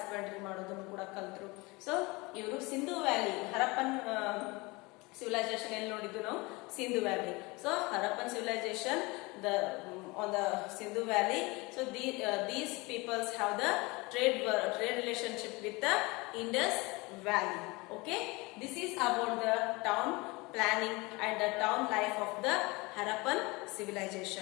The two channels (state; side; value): quieter; right; 24.7 dB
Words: ಮಾಡೋದನ್ನು ಕೂಡ ಕಲ್ತರು. ಸೊ ಇವರು ಸಿಂಧು ವ್ಯಾಲಿ, ಹರಪ್ಪನ್ civilization ಎಲ್ಲಿ ನೋಡಿದ್ದು ನಾವು? Sindhu valley. So Harappan civilization on the Sindhu Valley. So these peoples have the trade relationship with the Indus Valley. Okay, this is about the town planning and the town life of the Harappan